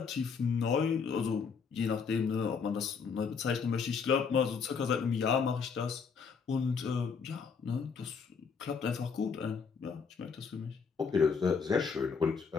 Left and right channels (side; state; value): right; quieter; 5.8 dB